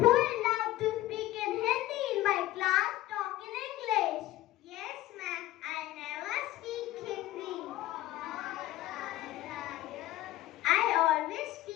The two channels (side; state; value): right; quieter; 15.5 dB